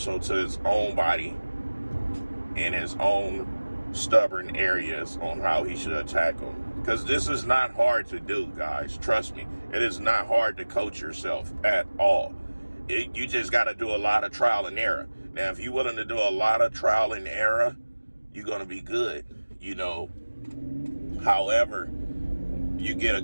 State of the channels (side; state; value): both; inverted; correlation -1.00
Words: to his own body and his own stubborn areas on how he should attack them. Because this is not hard to do, guys. Trust me. It is not hard to coach yourself at all. You just got to do a lot of trial and error. Now, if you're willing to do a lot of trial and error, you're going to be good, you know. However, you get a